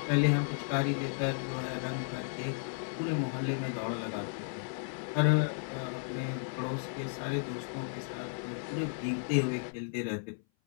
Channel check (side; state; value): right; silent; 55 dB below the other